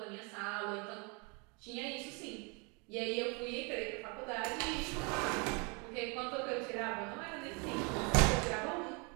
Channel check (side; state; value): left; quieter; 32.4 dB